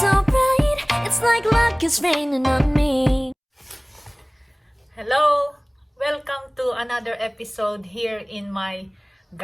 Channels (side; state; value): both; identical; correlation 1.00